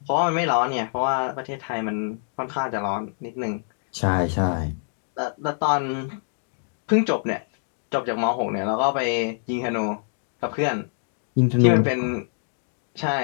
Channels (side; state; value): right; silent; digital silence